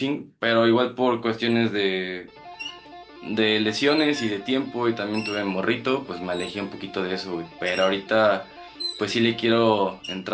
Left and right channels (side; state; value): both; identical; correlation 1.00